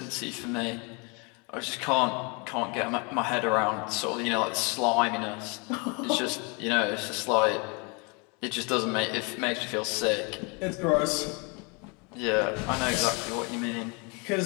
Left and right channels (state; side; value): quieter; right; 31.6 dB